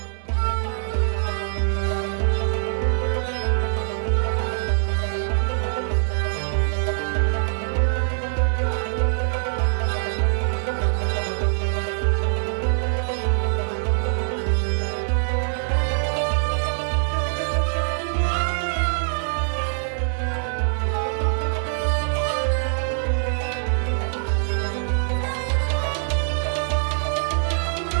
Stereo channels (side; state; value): left; silent; digital silence